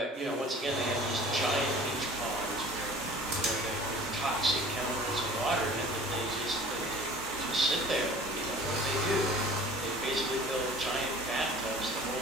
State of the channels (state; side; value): normal; both; correlation 0.46